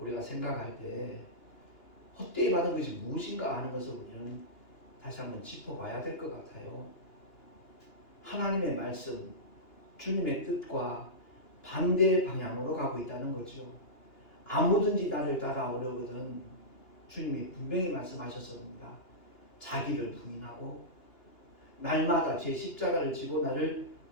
생각할 때 헛되이 받은 것이 무엇인가 하는 것을 우리는 다시 한번 짚어봐야 될 것 같아요. 하나님의 말씀, 주님의 뜻과 반대의 방향으로 가고 있다는 거죠. 아무든지 나를 따라오려거든 주님이 분명히 말씀하셨습니다. 자기를 부인하고 날마다 제 십자가를 지고 나를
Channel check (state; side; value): late; right; 2.9 ms